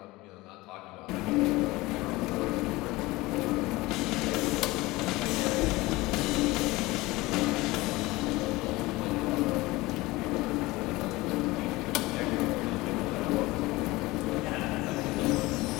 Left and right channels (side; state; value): right; quieter; 20.6 dB